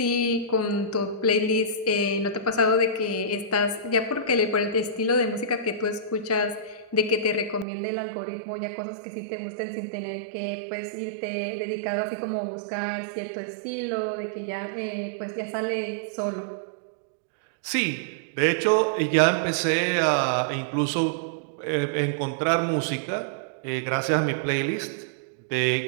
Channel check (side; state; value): left; drops out; at 7.7 s